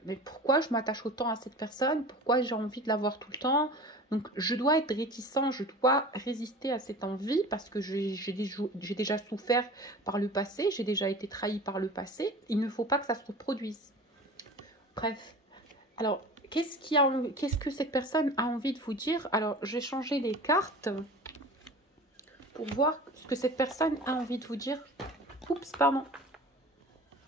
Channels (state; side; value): normal; both; correlation 0.38